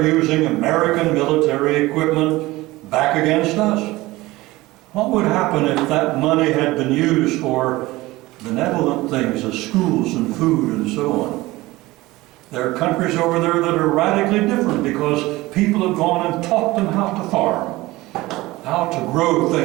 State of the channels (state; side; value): quieter; left; 19.4 dB